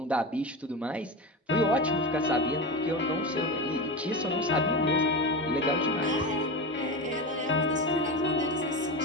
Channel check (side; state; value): both; normal; correlation 0.22